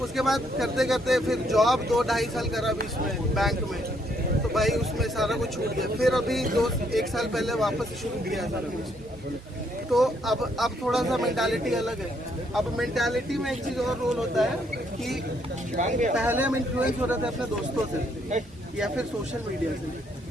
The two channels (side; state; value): both; normal; correlation 0.71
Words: उसके बाद करते करते फिर जॉब 2-2.5 साल करा बीच में बैंक में, तो भाई उसमें सारा कुछ छूट गया। फिर अभी 1 साल पहले वापस शुरू किया सारा कुछ। तो अब थोड़ा सा मेंटालिटी अलग है। अब मेंटालिटी में एक चीज़ और रोल होता है कि पहले हम इन्फ्लुएंस हो रहे थे अपने दोस्तों से या फिर सोशल मीडिया से,